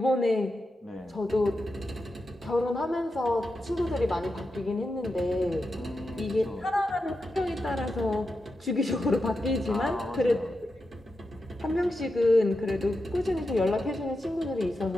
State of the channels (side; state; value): both; normal; correlation 0.89